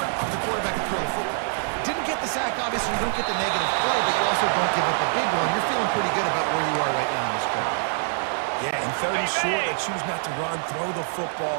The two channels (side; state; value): left; silent; 62 dB below the other